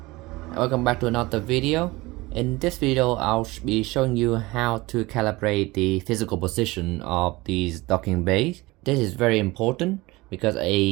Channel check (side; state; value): left; quieter; 21.4 dB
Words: welcome back to another video. In this video, I'll be showing you how to calibrate the physical position of these docking bays. This is very important because